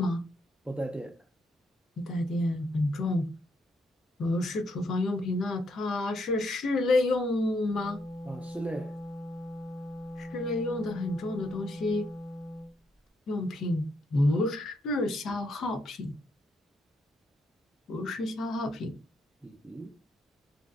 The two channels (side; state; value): both; normal; correlation 0.76